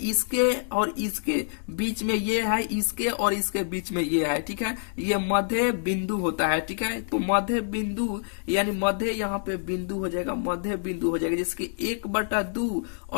और इसके बीच में ये है, इसके और इसके बीच में ये है, ठीक है। ये मध्य बिंदु होता है, ठीक है। तो मध्य बिंदु यानी मध्य यहाँ पे बिंदु हो जाएगा, मध्य बिंदु हो जाएगा, जिसके 1/2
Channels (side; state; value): right; silent; digital silence